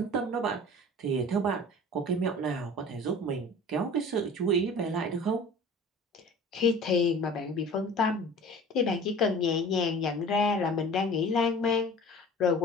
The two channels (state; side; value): normal; both; correlation 0.42